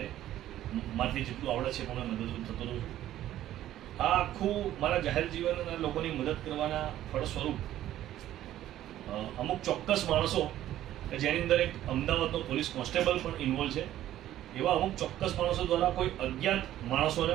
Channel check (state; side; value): quieter; left; 13.0 dB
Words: મારથી જેટલું આવડે છે પણ મદદરૂપ થતો રહું છું. આ આખું મારા જાહેર જીવનના લોકોની મદદ કરવાના ફળ સ્વરૂપ અમુક ચોક્કસ માણસો કે જેની અંદર એક અમદાવાદનો પોલીસ કોન્સ્ટેબલ પણ ઇન્વોલ્વ છે, એવા અમુક ચોક્કસ માણસો દ્વારા કોઈ અજ્ઞાત માણસોને